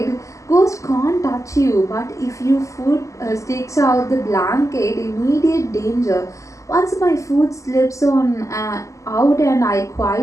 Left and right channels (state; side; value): late; right; 0.16 ms